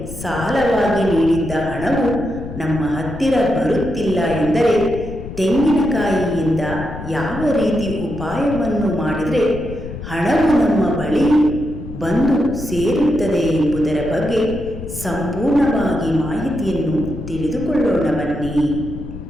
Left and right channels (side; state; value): left; noise; rumble, 10 dB below the sound